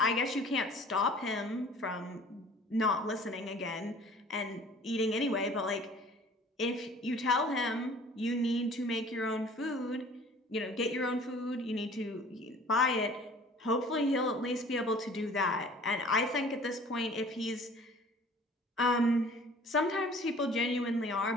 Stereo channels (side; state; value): both; normal; correlation 0.49